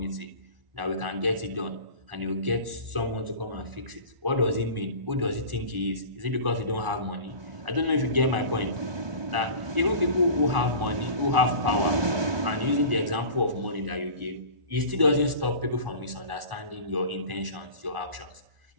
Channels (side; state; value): left; late; 1.0 ms